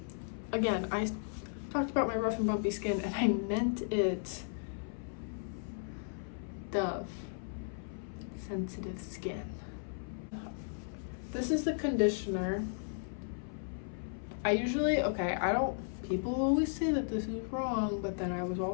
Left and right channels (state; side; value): silent; right; 54 dB below the other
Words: again, I talked about my rough and bumpy skin and I meant it Dove Sensitive Skin. This is the conditioner. People always say that this is wrong, but then I was